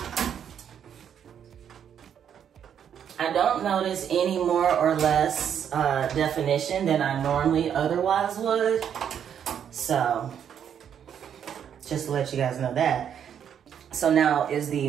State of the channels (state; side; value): quieter; left; 8.7 dB